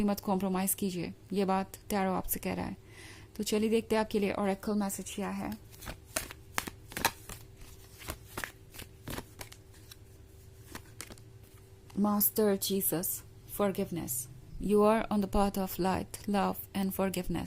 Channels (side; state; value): both; identical; correlation 1.00